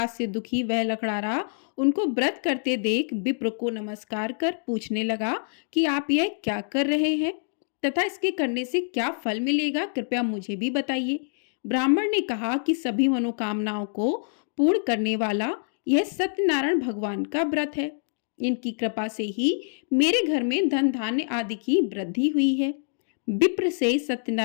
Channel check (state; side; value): silent; right; digital silence